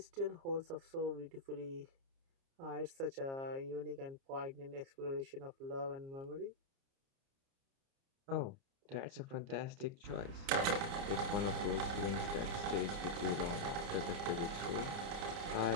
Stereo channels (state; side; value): late; left; 30 ms